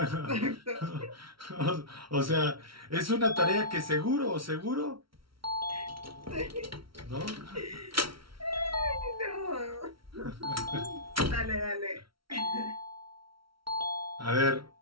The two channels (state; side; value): late; left; 0.75 ms